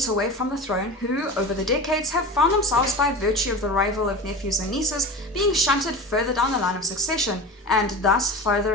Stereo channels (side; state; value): both; normal; correlation 0.30